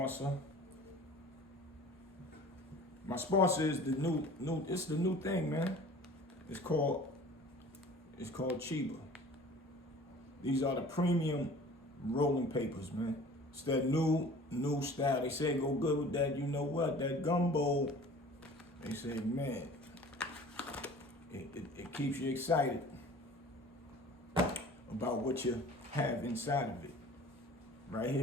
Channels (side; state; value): both; normal; correlation 0.45